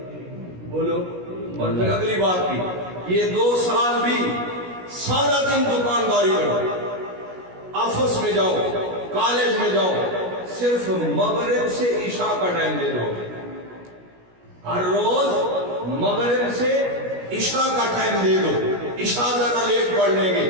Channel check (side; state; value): left; late; 17 ms